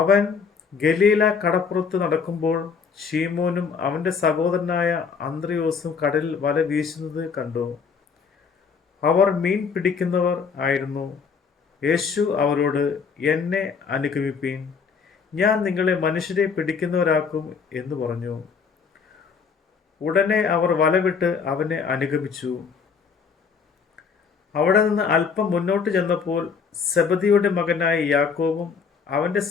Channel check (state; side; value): quieter; right; 5.8 dB